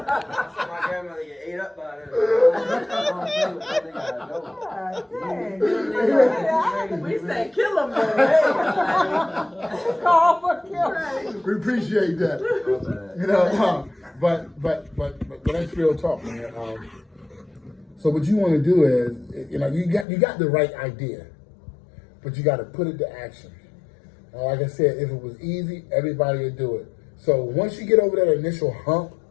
get ate up by her. We say kill him, Call for kill. We appreciate that. You know, but that's real talk, man. So what you want to do is, you got the right idea, but you got to put it to action. Like I said, if it was easy, everybody would do it. So once you get over that initial hump,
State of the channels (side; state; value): right; drops out; at 20.1 s